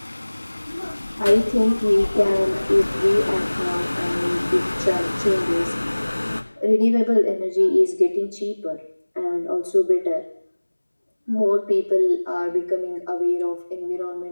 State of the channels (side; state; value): both; inverted; correlation -1.00